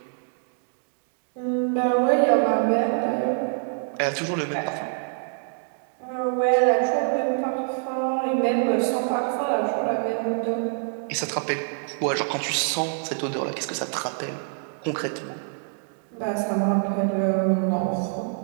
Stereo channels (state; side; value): silent; left; digital silence